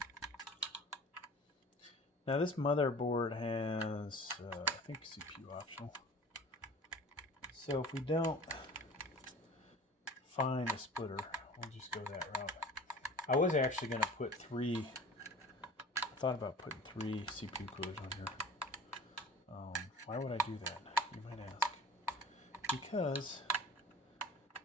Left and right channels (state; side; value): normal; both; correlation 0.43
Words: Now this motherboard has, I think, CPU optional. So if we don't find a splitter, we'll just go that route. I was actually going to put three. I thought about putting 3 CPU coolers on here. Why would I do that? You might ask. Because